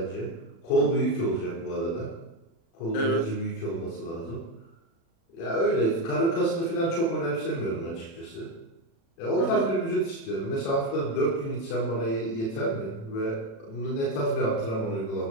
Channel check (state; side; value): late; right; 36 ms